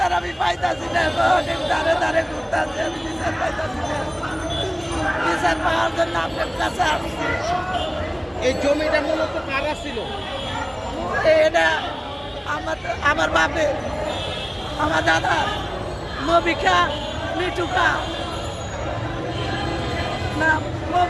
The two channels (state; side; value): identical; both; correlation 1.00